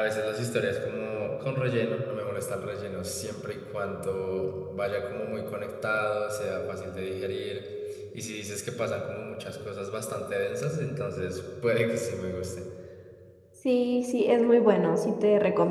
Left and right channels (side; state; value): both; identical; correlation 1.00